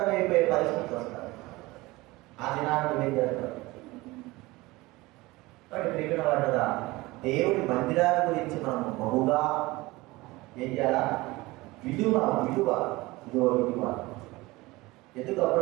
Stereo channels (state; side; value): quieter; left; 20.9 dB